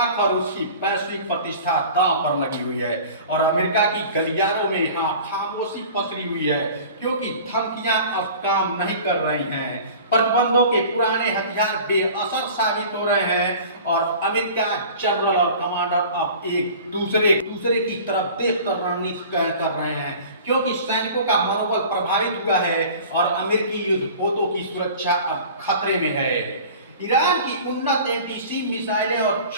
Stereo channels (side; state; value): both; inverted; correlation -0.42